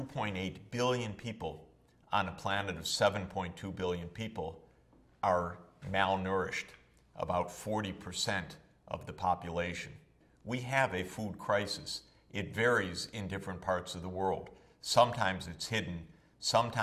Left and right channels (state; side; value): identical; both; correlation 1.00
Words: billion people on a planet of 7.2 billion people are malnourished, about 40% of the population. We have a food crisis. It varies in different parts of the world. Sometimes it's hidden,